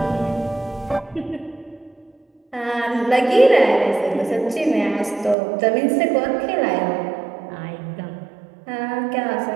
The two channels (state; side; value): drops out; left; at 5.4 s